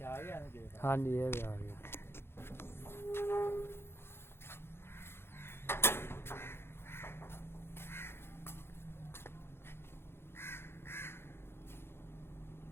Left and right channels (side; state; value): right; late; 0.11 ms